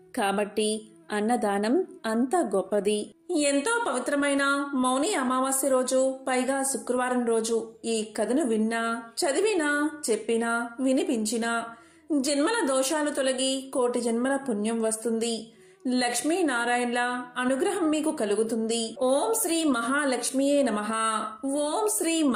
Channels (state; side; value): identical; both; correlation 1.00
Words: కాబట్టి అన్నదానం అంత గొప్పది. ఎంతో పవిత్రమైన మౌని అమావాస్య రోజు, పైగా శుక్రవారం రోజు ఈ కథను విన్నా, చదివినా, చెప్పినా, వినిపించినా జన్మల దోషాలు తొలగి కోటి జన్మల పుణ్యం వస్తుంది. లక్ష్మీనారాయణల అనుగ్రహం మీకు కలుగుతుంది. ఓం శ్రీ మహాలక్ష్మియే నమః. ఓం శ్రీ